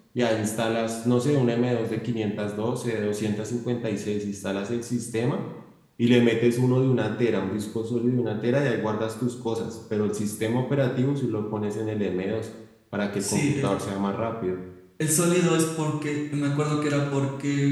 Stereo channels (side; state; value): both; identical; correlation 1.00